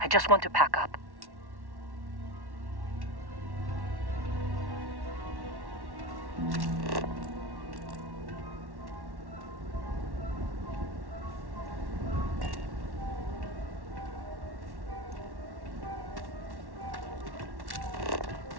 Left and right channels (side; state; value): left; late; 1.1 ms